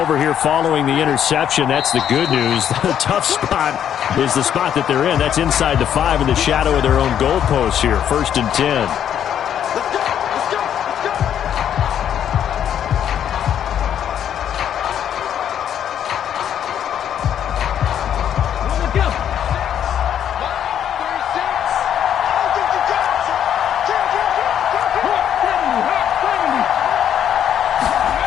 here following the interception. That's the good news. The tough spot is the spot that they're in. That's inside the 5 in the shadow of their own goalpost here. 1st and 10.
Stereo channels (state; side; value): quieter; right; 9.6 dB